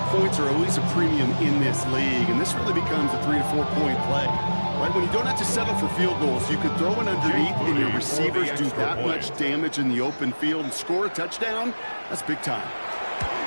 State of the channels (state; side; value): inverted; both; correlation -1.00